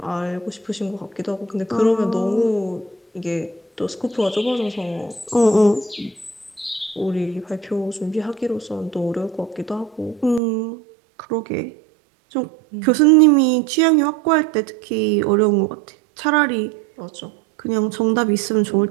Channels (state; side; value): drops out; left; at 10.4 s